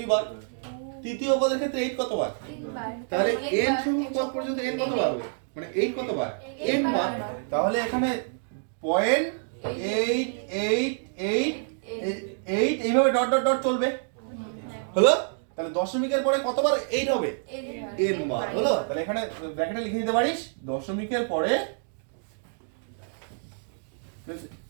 তৃতীয় পদের ক্ষেত্রে 8 কতবার? তাহলে n সংখ্যক পদ পর্যন্ত n কতবার হবে? মানে 8 কতবার? n বার। তাহলে এখানে 0.888 এইভাবে ডট ডট ডট চলবে, হলো? তাহলে দশমিকের পরে কতবার 8 হবে? n বার, হলো? তাহলে এখানে ব্র্যাকেটে লিখে দিতে পারিস, দশমিকের পরে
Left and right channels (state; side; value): silent; left; digital silence